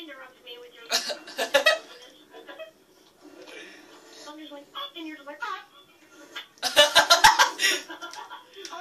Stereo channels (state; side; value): identical; both; correlation 1.00